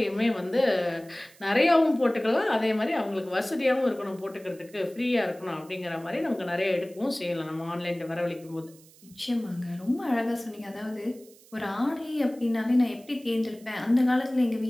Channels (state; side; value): noise; right; hiss, 25 dB below the sound